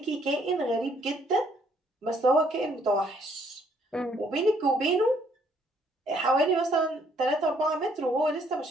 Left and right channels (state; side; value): normal; both; correlation 0.66